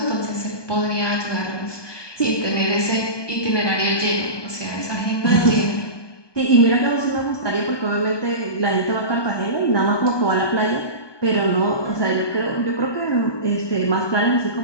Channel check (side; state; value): right; late; 1.2 ms